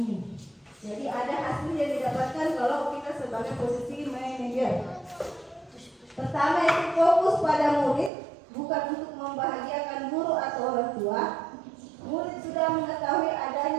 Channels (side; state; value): left; drops out; at 8.1 s